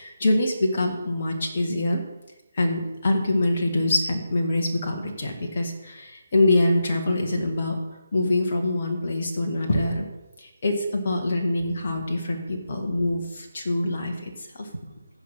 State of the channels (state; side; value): inverted; both; correlation -0.88